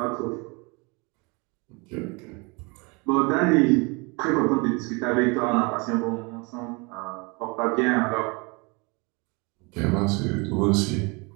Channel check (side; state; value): left; quieter; 29.0 dB